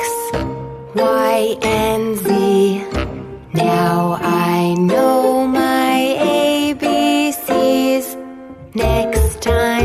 Y, and Z. Now I know my ABCs. Next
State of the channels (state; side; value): identical; both; correlation 1.00